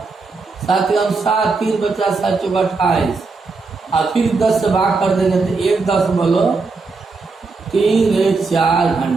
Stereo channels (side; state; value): left; quieter; 4.1 dB